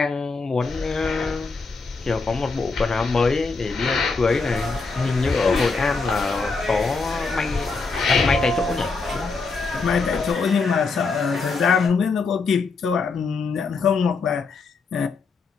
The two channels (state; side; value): quieter; right; 4.3 dB